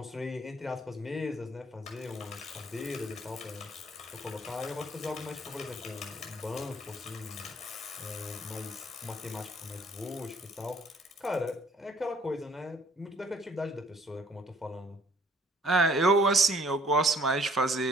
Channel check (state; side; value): normal; both; correlation 0.59